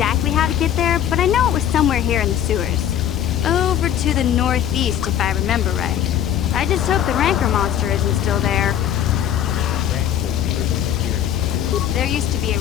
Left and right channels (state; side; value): quieter; right; 10.3 dB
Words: how to get there, but I know it was somewhere here in the sewers. Over to the northeast, if I remember right. I just hope the Rancor monster isn't still there. There used to be a